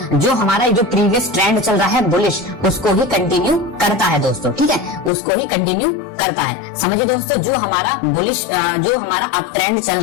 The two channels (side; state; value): right; drops out; at 5.1 s